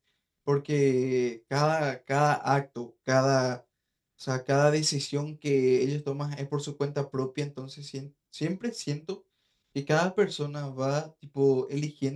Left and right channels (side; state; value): both; identical; correlation 1.00